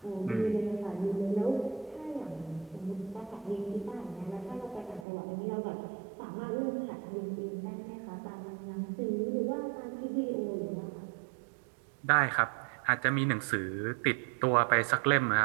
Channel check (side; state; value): left; drops out; at 5.1 s